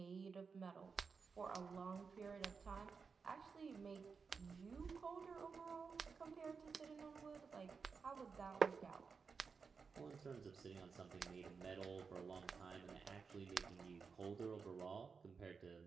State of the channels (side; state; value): left; quieter; 5.3 dB